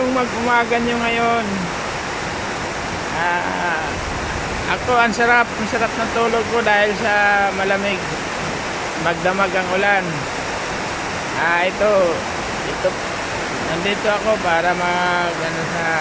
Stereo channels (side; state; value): both; identical; correlation 1.00